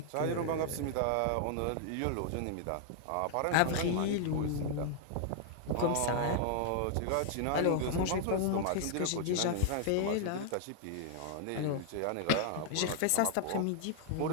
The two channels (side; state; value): both; different; correlation 0.00